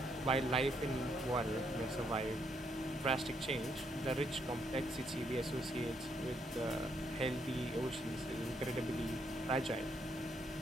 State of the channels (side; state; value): both; normal; correlation 0.74